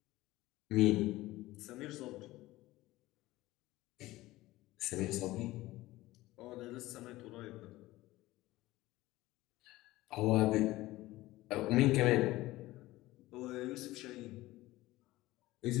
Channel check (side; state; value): right; quieter; 17.8 dB